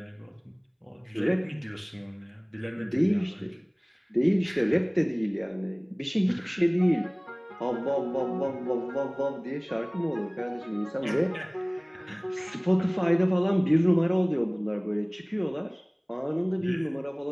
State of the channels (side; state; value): both; identical; correlation 1.00